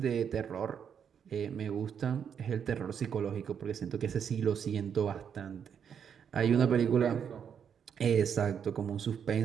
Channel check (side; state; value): left; quieter; 7.7 dB